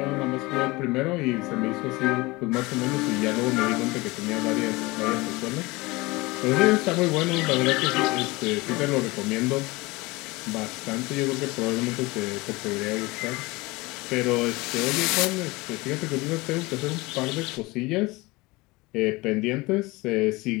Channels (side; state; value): right; quieter; 22.4 dB